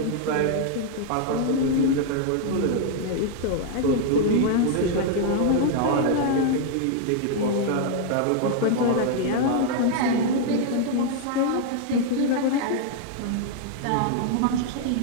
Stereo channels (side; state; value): both; different; correlation 0.00